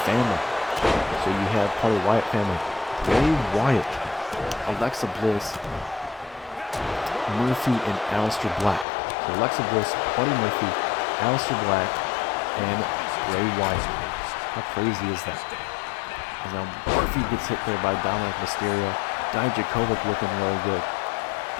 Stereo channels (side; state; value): right; drops out; at 8.8 s